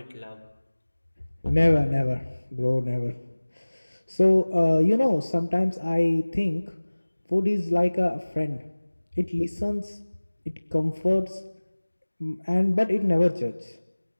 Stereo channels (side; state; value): both; inverted; correlation -1.00